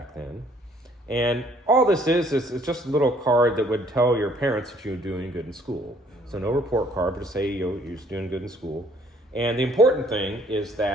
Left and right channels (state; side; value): normal; both; correlation 0.61